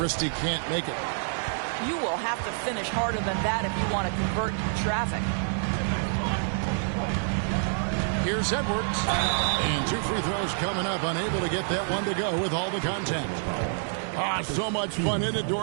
can't make it. You will have to finish harder than that if you want to convert traffic. Here's Edwards. And 2 free throws coming up. Unable to get that one to go with all the contact. So much fun in it,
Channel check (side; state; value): left; silent; 58 dB below the other